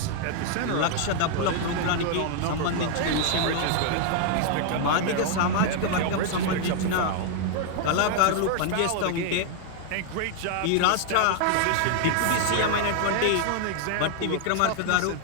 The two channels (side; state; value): both; different; correlation 0.00